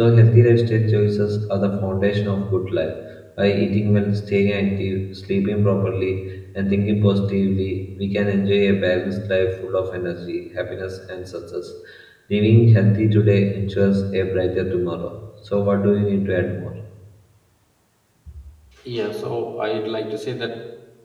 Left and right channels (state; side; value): identical; both; correlation 1.00